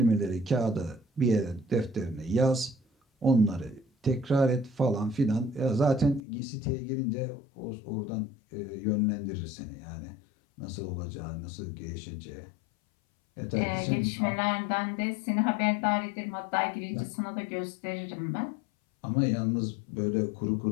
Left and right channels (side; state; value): right; drops out; at 6.2 s